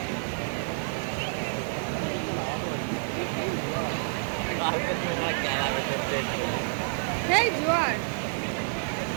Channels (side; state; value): left; silent; digital silence